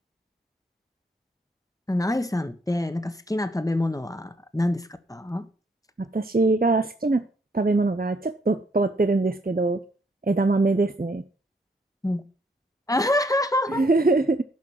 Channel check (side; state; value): both; normal; correlation 0.70